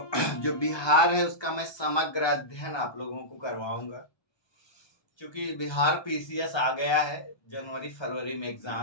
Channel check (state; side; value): late; right; 1.2 ms